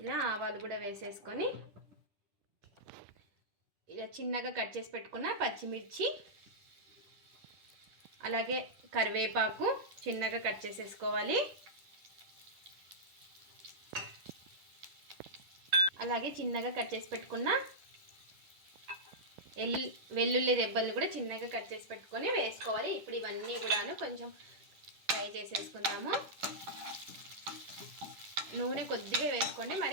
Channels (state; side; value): late; left; 10 ms